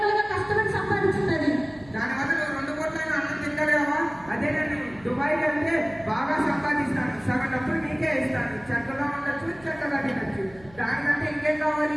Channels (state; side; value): noise; right; hum, 23 dB below the sound